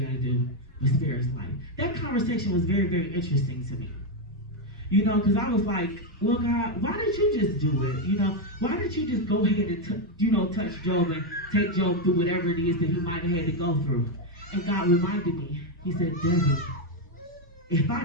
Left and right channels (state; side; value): normal; both; correlation 0.05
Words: gotta do, but spare his life. That conversation was very, very interesting to me. You know, because I was like, well, God, why did you just do it? You know, why did you just go ahead and, touch Job and take Job through whatever it is that he might have had to go through? And God reminded me, he said, Debbie, if I